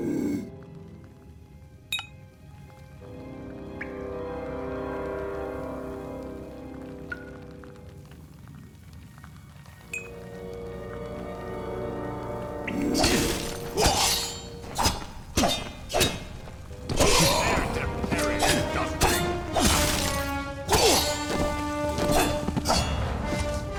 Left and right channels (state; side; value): identical; both; correlation 1.00